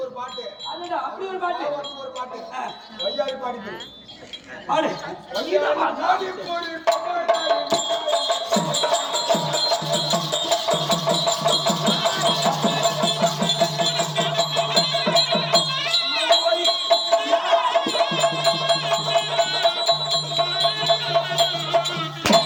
ஒரு பாட்டு. அப்படி ஒரு பாட்டு ஒரு பாட்டு வையாரி பாடிட்டு பாடு. வையாரி போடு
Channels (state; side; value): identical; both; correlation 1.00